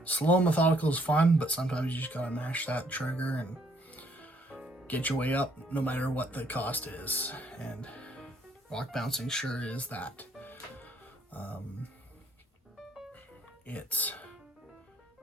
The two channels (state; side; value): normal; both; correlation 0.66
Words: Slow and methodical is fun, but sometimes you just gotta mash that trigger and get your way up no matter what the cost is. And rock bouncing sure is that. It's